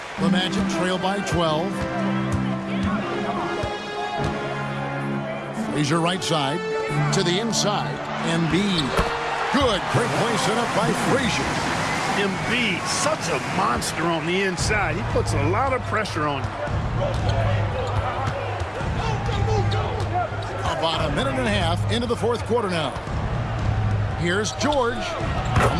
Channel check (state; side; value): identical; both; correlation 1.00